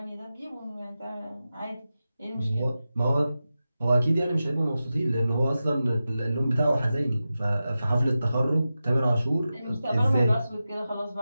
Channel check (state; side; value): inverted; both; correlation -0.93